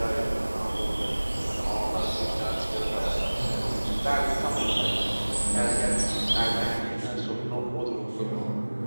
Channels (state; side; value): inverted; both; correlation -1.00